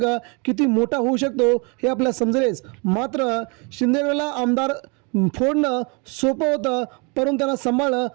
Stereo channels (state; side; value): quieter; left; 31.9 dB